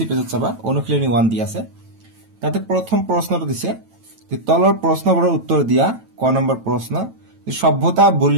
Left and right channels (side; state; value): left; late; 9.0 ms